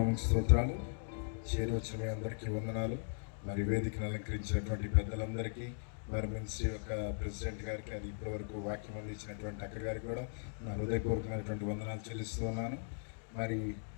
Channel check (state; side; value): silent; right; digital silence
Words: స్తోత్రాలు. చేరి వచ్చిన మీ అందరికీ వందనాలు. మరి వేదికను అలంకరించినటువంటి పెద్దలందరికీ, మరి మినిస్ట్రీ యొక్క ప్రెసిడెంట్ గారికి, అది ఇప్పటివరకు వాక్యం అందించినటువంటి అక్క గారికి కూడా నా హృదయపూర్వకమైనటువంటి వందనాలు చెల్లిస్తూ ఉన్నాను. మరి